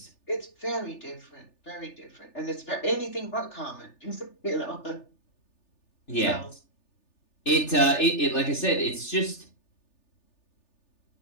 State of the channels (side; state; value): right; late; 3.4 ms